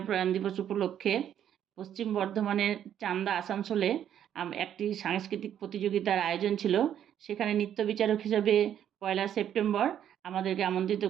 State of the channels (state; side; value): quieter; left; 10.0 dB